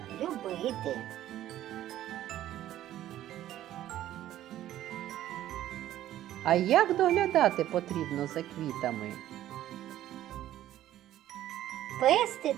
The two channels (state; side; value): quieter; left; 13.0 dB